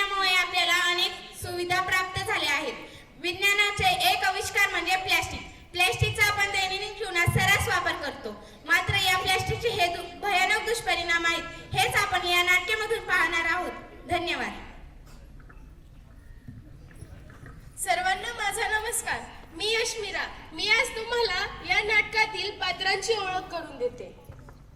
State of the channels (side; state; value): both; identical; correlation 1.00